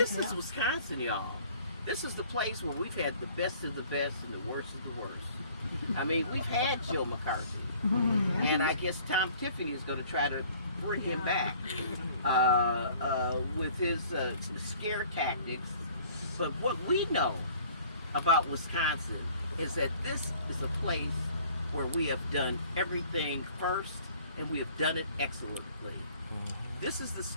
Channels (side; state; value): both; inverted; correlation -0.53